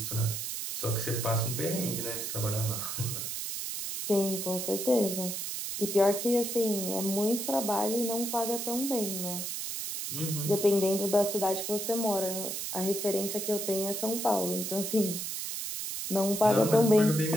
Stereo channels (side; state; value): right; noise; hiss, 4 dB below the sound